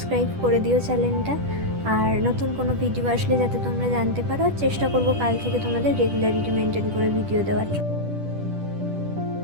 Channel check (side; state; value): left; late; 10 ms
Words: করে দিও চ্যানেলটা। আর নতুন কোনো ভিডিও আসলে যাতে তোমরা জানতে পারো, চেষ্টা করবো কাল থেকে তোমাদের রেগুলারিটি মেনটেন করে ভিডিও দেওয়ার।